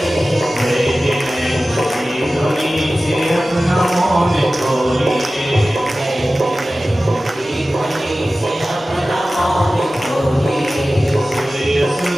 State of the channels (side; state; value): both; normal; correlation 0.96